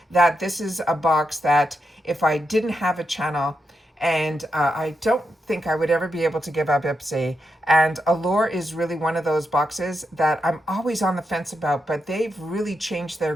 that this is a box that if I didn't have a channel, and I don't think I would ever be able to give up Ipsy. And Allure is really one of those boxes that I'm always on the fence about, but they've really changed their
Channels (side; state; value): both; normal; correlation 0.85